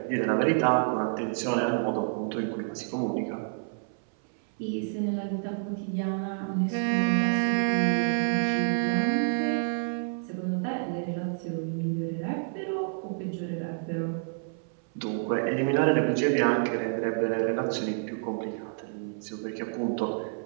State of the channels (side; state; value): left; silent; 59 dB below the other